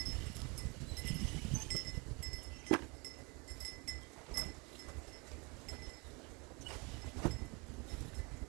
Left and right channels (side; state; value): left; quieter; 29.2 dB